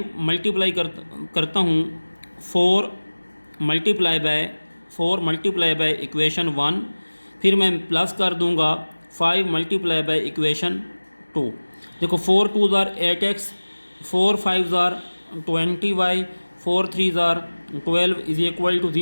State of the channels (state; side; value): inverted; both; correlation -1.00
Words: मल्टीप्लाई करता हूँ 4 मल्टीप्लाई बाय इक्वेशन 1, फिर मैं प्लस कर दूंगा 5 मल्टीप्लाई बाय इक्वेशन 2। देखो 4 2s are 8x, 4 5s are 20y, 4 3s are 12 is equal to